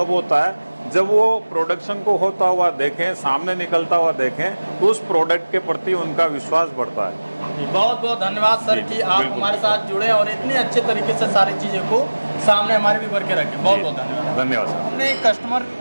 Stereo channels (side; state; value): both; inverted; correlation -1.00